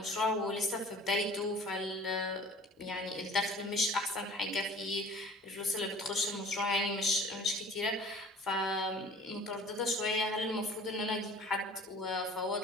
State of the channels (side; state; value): both; normal; correlation 0.46